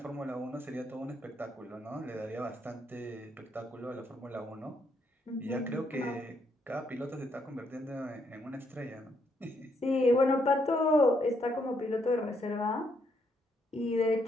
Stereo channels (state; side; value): normal; both; correlation 0.74